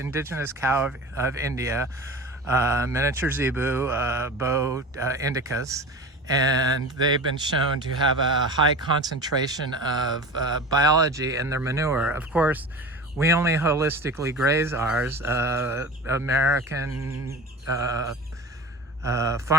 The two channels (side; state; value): both; normal; correlation 0.34